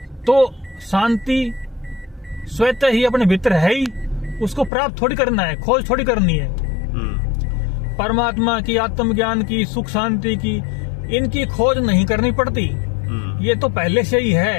तो शांति स्वतः ही अपने भीतर है ही। उसको प्राप्त थोड़ी करना है, खोज थोड़ी करनी है। परमात्मा की, आत्मज्ञान की, सुख शांति की, इनकी खोज नहीं करनी पड़ती। ये तो पहले से ही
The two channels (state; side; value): drops out; right; at 4.7 s